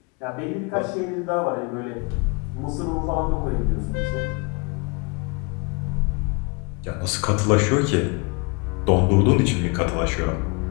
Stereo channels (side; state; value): right; quieter; 30.6 dB